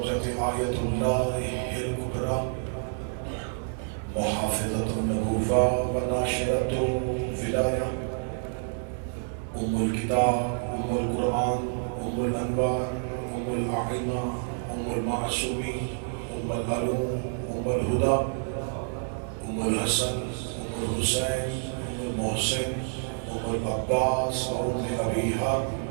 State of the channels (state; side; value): silent; left; 59 dB below the other